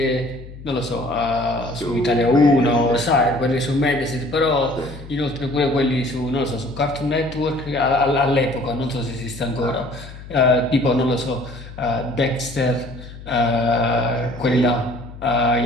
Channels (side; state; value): left; noise; hum, 15 dB below the sound